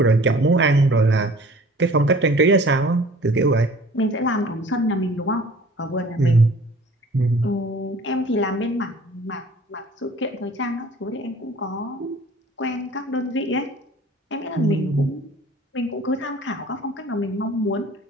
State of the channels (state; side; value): normal; both; correlation 0.48